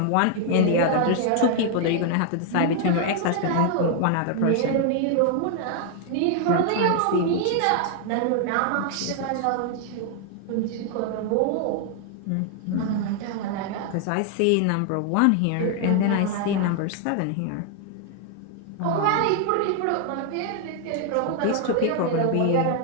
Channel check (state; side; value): different; both; correlation 0.00